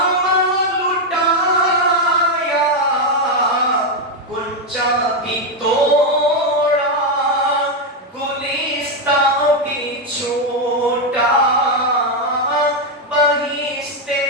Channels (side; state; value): both; normal; correlation 0.04